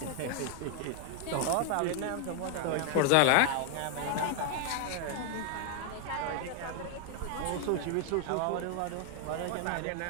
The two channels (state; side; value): different; both; correlation 0.00